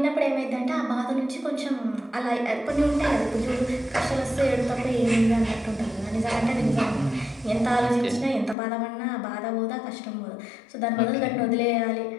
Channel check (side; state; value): right; drops out; at 8.6 s